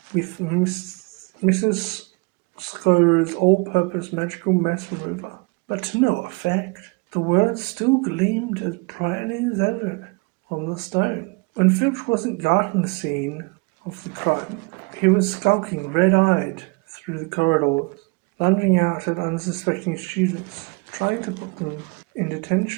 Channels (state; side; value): quieter; left; 30.2 dB